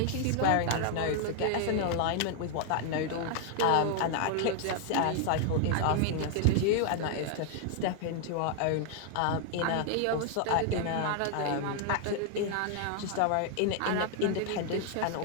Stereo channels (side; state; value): both; different; correlation 0.00